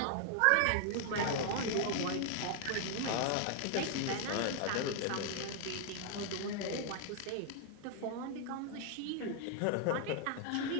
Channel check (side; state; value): both; different; correlation 0.00